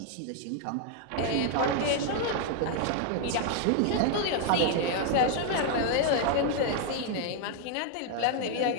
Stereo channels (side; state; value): both; different; correlation 0.00